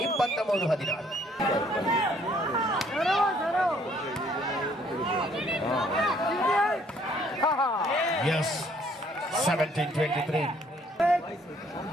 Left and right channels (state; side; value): normal; both; correlation 0.63